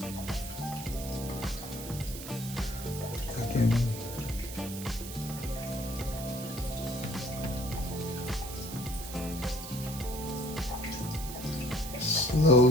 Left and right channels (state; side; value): noise; right; hiss, 10 dB below the sound